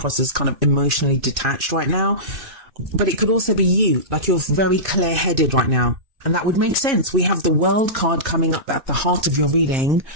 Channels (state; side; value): late; left; 2.6 ms